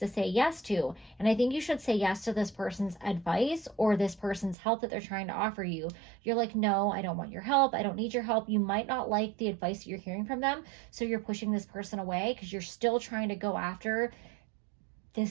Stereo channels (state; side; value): drops out; left; at 4.5 s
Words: say yes to. And I think you should say yes to this person's advice or this person's help that they're trying to offer you. You're like, no, I don't want your help. I don't need your help. You might not like the advice that you're hearing from them. So you're pushing this person away because you're still trying to go after